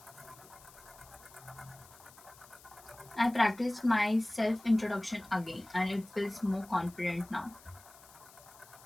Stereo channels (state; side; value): noise; left; hiss, 22 dB below the sound